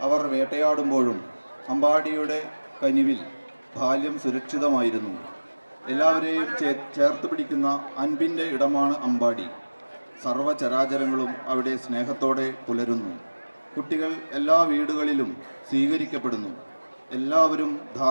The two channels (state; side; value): inverted; both; correlation -1.00